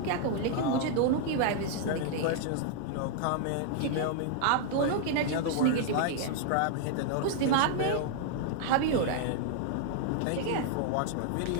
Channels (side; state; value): both; different; correlation 0.00